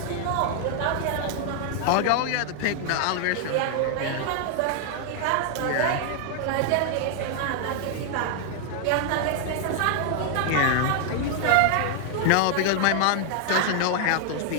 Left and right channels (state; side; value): different; both; correlation 0.00